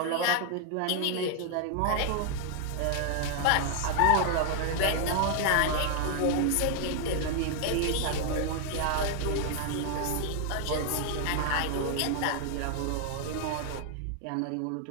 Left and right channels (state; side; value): different; both; correlation 0.00